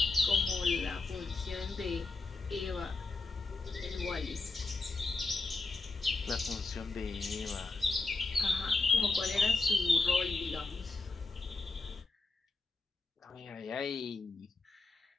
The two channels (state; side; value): quieter; right; 3.7 dB